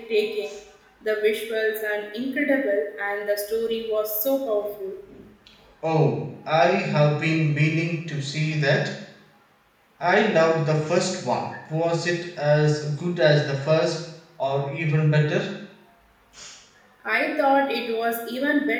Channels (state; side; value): identical; both; correlation 1.00